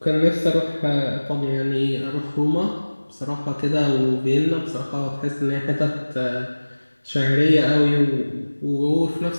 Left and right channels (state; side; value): inverted; both; correlation -1.00